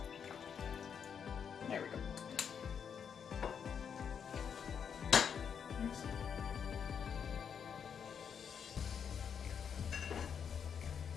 There we go.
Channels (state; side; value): quieter; right; 7.3 dB